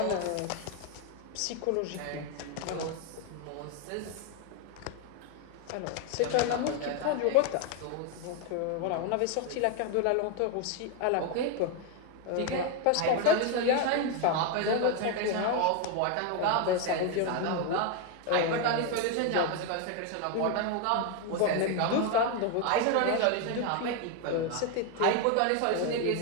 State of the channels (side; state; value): both; different; correlation 0.01